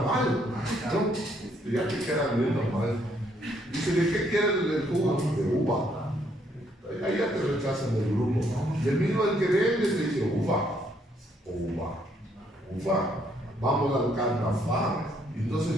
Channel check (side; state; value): both; normal; correlation 0.70